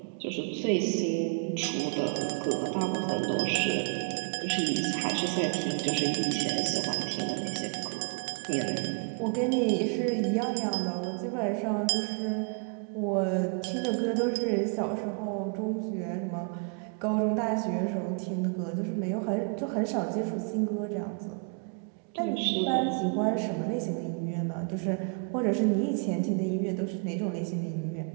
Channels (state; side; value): quieter; left; 39.2 dB